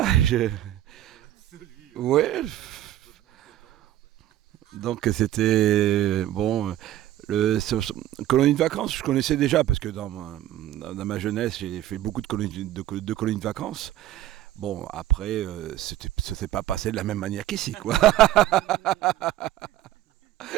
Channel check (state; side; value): quieter; left; 13.4 dB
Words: ouais. Donc c'était bon. Colonie de vacances, je connaissais déjà parce que dans ma jeunesse, j'ai fait beaucoup de colonies de vacances. Bon, après, ça s'est pas passé de la même manière qu'ici, quoi.